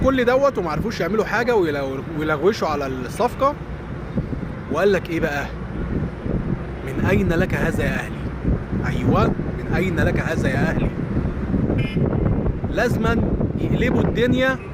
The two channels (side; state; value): both; identical; correlation 1.00